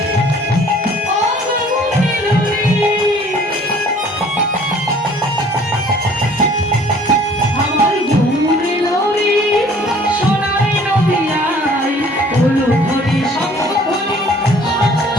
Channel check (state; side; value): normal; both; correlation 0.54